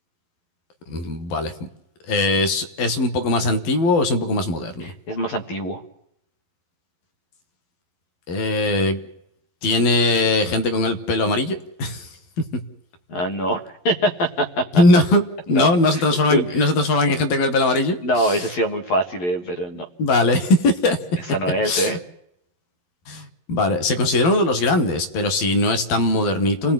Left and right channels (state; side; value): late; right; 11 ms